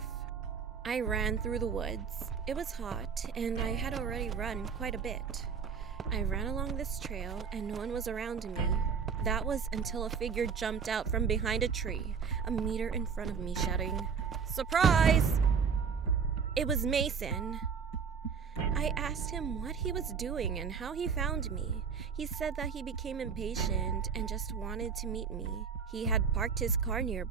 I ran through the woods. It was hot and I had already run quite a bit. I ran along this trail and no one was around me. That was until a figure jumped out from behind a tree, a meter in front of me, shouting, "Surprise!" It was Mason. I asked him what he was doing and how he found me. He said that he became impatient and just wanted to meet me. He had parked his car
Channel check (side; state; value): left; quieter; 6.2 dB